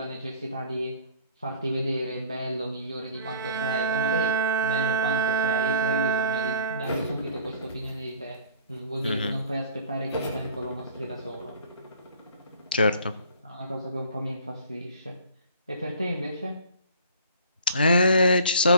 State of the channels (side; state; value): both; inverted; correlation -0.50